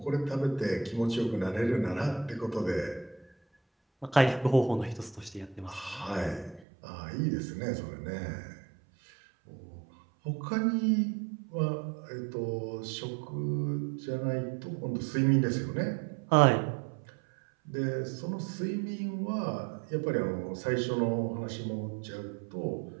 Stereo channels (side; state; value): left; drops out; at 6.6 s